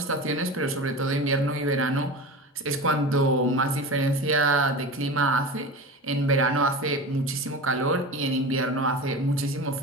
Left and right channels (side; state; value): both; normal; correlation 0.30